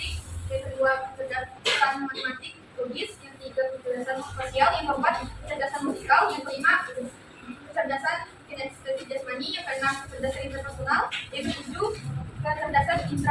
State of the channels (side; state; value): both; identical; correlation 1.00